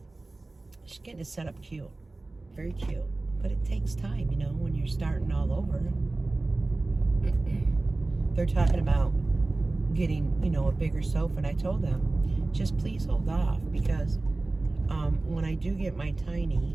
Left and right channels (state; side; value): quieter; left; 3.1 dB